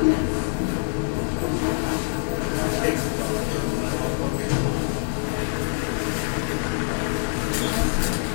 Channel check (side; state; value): right; silent; 62 dB below the other